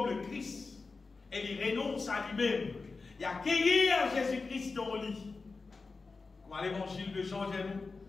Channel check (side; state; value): right; quieter; 4.1 dB